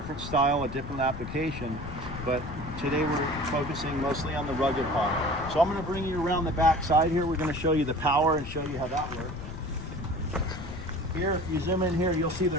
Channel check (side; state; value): left; noise; rumble, 10 dB below the sound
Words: style, a different application, but today we're focusing mostly on the rugged pod. So I'm going to bring you around the back side here. We're going to show you the power and show you how that works. Here, if you zoom in here, you'll see